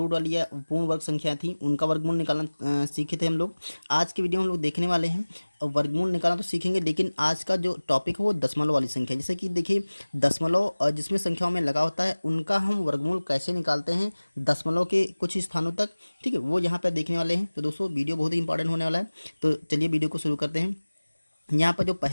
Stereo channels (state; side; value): inverted; both; correlation -1.00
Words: वाली या पूर्ण वर्ग संख्या थी उनका वर्गमूल निकालना सीखे थे हम लोग। आज की वीडियो में हम लोग देखने वाले हैं और वर्गमूल निकालना तो सीखेंगे, लेकिन आज का जो टॉपिक है वो दशमलव वाली संख्या। जैसे कि देखिए, दशमलव जिसमें संख्याओं में लगा होता है उनका हम वर्गमूल कैसे निकालते हैं दशमलव के कुछ स्थानों तक। ठीक है, वो यहाँ पर देखने वाले हैं। तो दोस्तों, वीडियो बहुत ही इंपॉर्टेंट होने वाला है। तो चलिए वीडियो को शुरू करते हैं। यहाँ पर जो